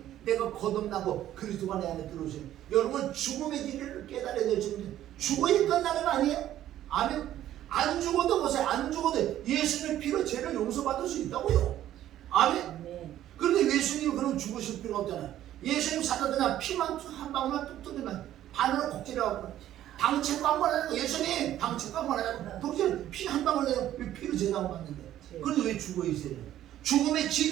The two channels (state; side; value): quieter; left; 12.5 dB